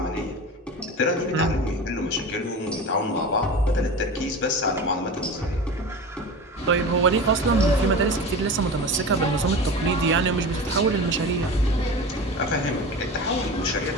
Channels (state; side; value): normal; both; correlation 0.31